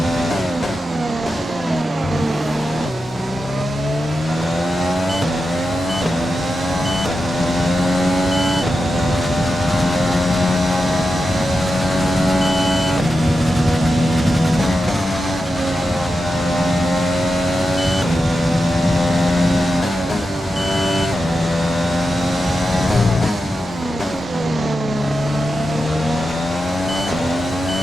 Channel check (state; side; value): normal; both; correlation 0.89